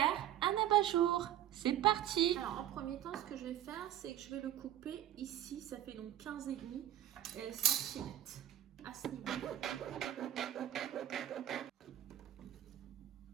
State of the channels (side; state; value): left; quieter; 12.0 dB